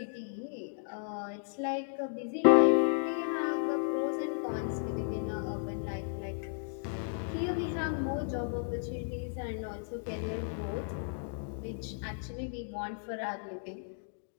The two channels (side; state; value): right; silent; digital silence